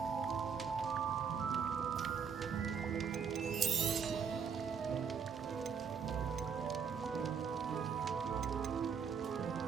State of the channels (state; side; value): quieter; left; 6.5 dB